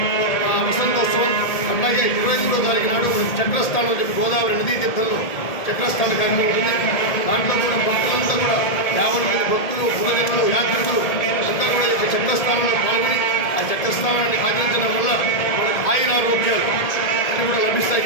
వసంతోత్సవం, అట్లాగే 23వ తారీఖు నాడు చక్రస్థానం అని చెప్పి గోదావరి నదీ తీర్థంలో చక్రస్థాన కార్యక్రమం ఉంటుంది. దాంట్లో కూడా భక్తులంతా కూడా 50 మంది భక్తులు, పురజనులు, యాత్రికులు అంతా కూడా ఈ యొక్క చక్రస్థానంలో పాల్గొని ఆ చక్రస్థానాన్ని ఆచరించడం వల్ల మనకు ఆయురారోగ్యాలు అన్నీ కూడా లభిస్తాయి.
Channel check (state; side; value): late; right; 1.8 ms